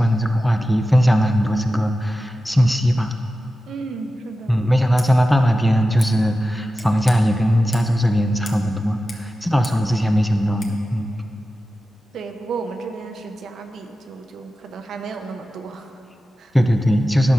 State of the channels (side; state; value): both; normal; correlation 0.93